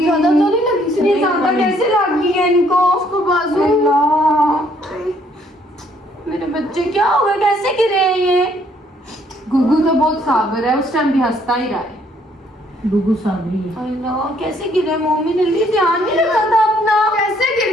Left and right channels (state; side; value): normal; both; correlation 0.66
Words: तो नहीं लगी सीढ़ी? ज्यादा कैसे लगी है इनको? उसको बाजू। मेरे बच्चे क्या हो गए, कैसे गिरे हैं ये? गुगू तो बहुत साबर है, उस टाइम भी हंसता ही रहा है। गुगू साबरी है। अल्लाह कैसे गिरे? मम्मी ने ध्यान नहीं रखा था अपना। कैसे गिर